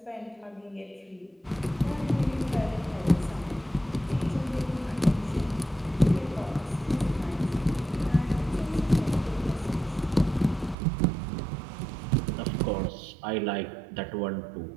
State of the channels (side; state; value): left; drops out; at 10.8 s